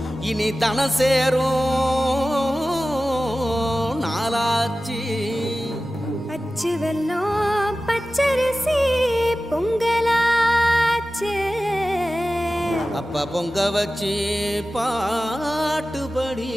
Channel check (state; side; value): normal; both; correlation 0.95